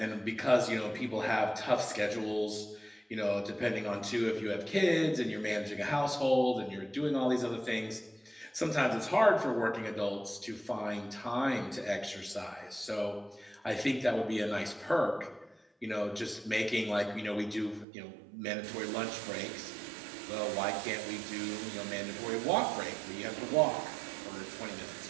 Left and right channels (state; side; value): drops out; left; at 17.9 s